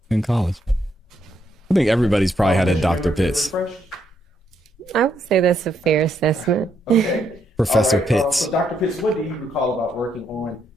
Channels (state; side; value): normal; both; correlation 0.76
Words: in college. I think everybody's probably had a Dr. Pitts. I would say that's a fair assessment. Okay. Professor right, Pitts. So Dr. Pitts, what do you recall about working on